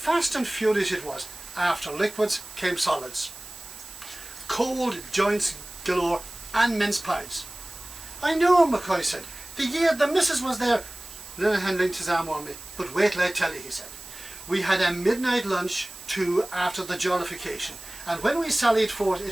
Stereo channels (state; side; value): noise; right; hiss, 15 dB below the sound